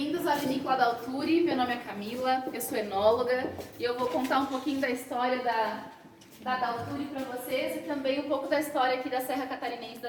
à Vinícola da Alturi. Meu nome é Camila, eu sou enóloga e eu vou contar um pouquinho da história da Alturi para vocês e também um pouco da história aqui da Serra Catarinense,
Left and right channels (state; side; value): identical; both; correlation 1.00